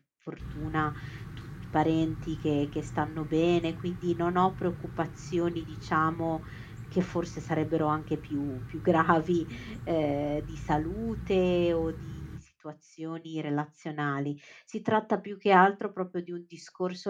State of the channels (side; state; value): both; identical; correlation 1.00